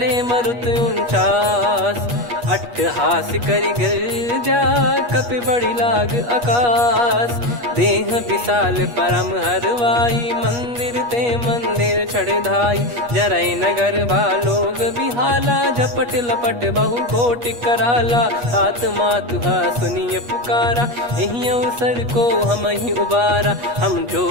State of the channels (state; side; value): late; left; 8.4 ms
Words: मरुत 49, अट्टहास करि गर्जा, कपि बड़ी लाग आकाश, देह विशाल परम हरवाई, मंदिर ते मंदिर चढ़धाई, जरई नगर बालोग बिहाला, झपट लपट बहु कोटि कराला, सात मातुहा सुनिय पुकारा, यही अवसर को हम ही उबारा, हम जो